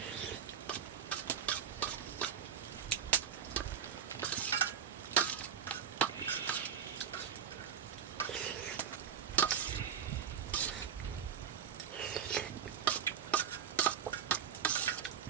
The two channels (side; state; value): left; quieter; 8.0 dB